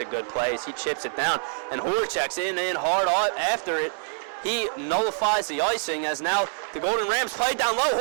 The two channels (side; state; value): left; silent; 61 dB below the other